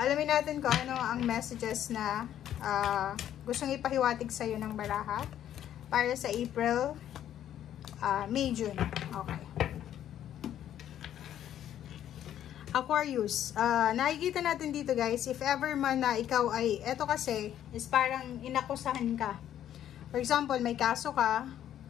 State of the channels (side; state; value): right; quieter; 10.9 dB